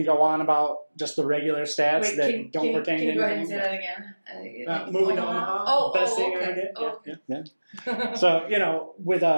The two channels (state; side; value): inverted; both; correlation -1.00